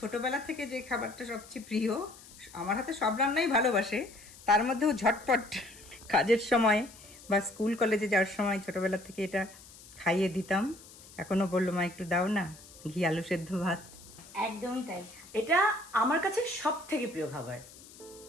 থেকে যে খাবারটা সবচেয়ে প্রিয়, আমার হাতে সব রান্নাই ভালোবাসে, তার মধ্যেও ঝটপট কাজের সময় বা স্কুল কলেজে যাওয়ার সময় ছোটবেলা থেকে এটা খাইয়ে দিতাম। এখনো বললো মা একটু দাও না, ঘি আলু সেদ্ধ ভাত। একদমই তাই, এটা আমার কাছে সব থেকে প্রিয় খাবার।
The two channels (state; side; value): noise; left; hiss, 20 dB below the sound